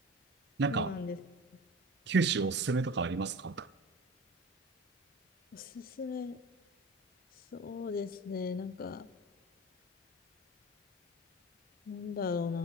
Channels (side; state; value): both; normal; correlation 0.36